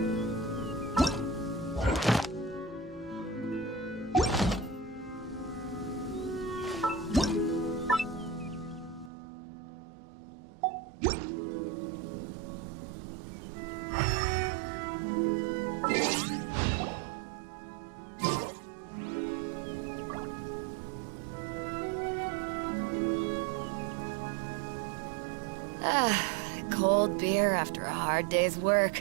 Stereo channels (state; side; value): drops out; left; at 9.1 s